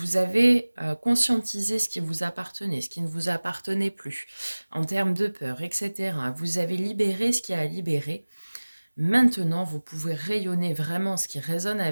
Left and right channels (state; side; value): inverted; both; correlation -1.00